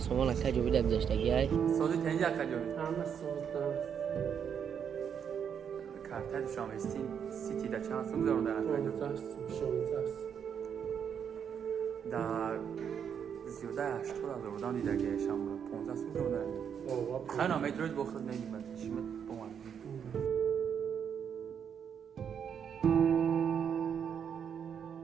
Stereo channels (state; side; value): quieter; left; 7.8 dB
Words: اکا جوبی در گذشتگی های سازی تنجی اکا جوبی همه سوزدم کارت دوشنبه سیتی در چند سوم گذارم در اکا جوبی 16 در زیاده 80 هزار بودم دیده که شما 15 سوم گذارم در خیلی نامه دروش بخورد نمیمد شیمت بومن